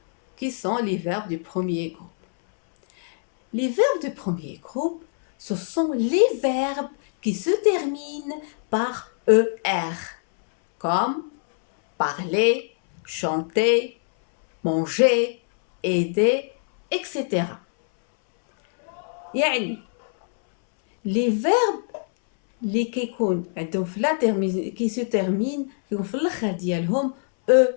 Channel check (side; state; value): right; silent; 63 dB below the other